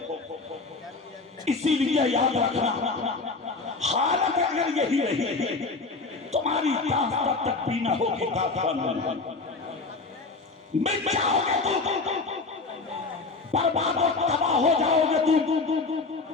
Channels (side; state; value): right; quieter; 3.9 dB